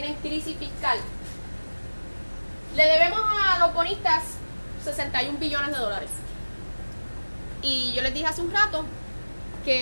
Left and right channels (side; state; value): both; inverted; correlation -1.00